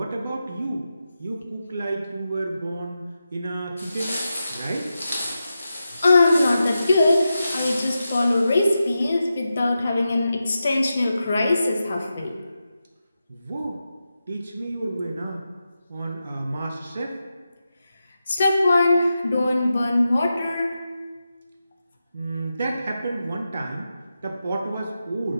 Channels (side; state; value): both; inverted; correlation -0.90